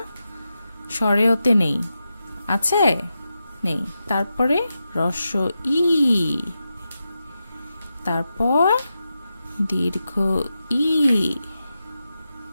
স্বরেয়তে নেই, আছে? নেই। তারপরে রস্য ই, তারপর দীর্ঘ ই।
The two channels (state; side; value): inverted; both; correlation -0.89